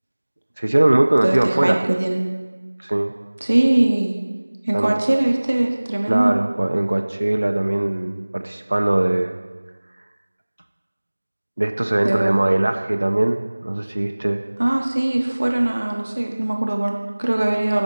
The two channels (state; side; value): inverted; both; correlation -1.00